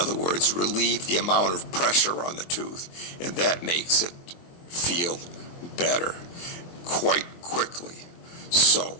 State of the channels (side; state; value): right; late; 23 ms